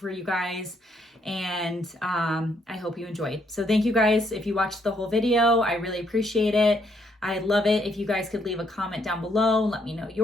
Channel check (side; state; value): both; normal; correlation 0.72